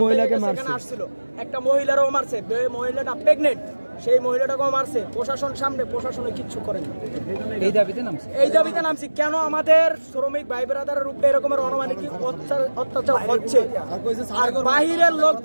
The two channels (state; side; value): inverted; both; correlation -1.00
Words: এখানে আসছিল, একটা মহিলারও মারছে, মহিলাটা প্রেগনেন্ট, সেই মহিলাটাকেও মারছে। প্রশাসন সামনে, প্রশাসনে কিচ্ছু করেনি। এই দাবিতে নামছি কেন আমাদের শ্রমিক ভাই বেড়াদারের উপরে এরকমের অনমানিক অত্যাচার হচ্ছে, আর বাহিরের লোক